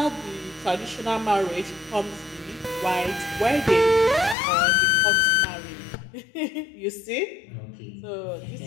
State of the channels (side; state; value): right; drops out; at 4.4 s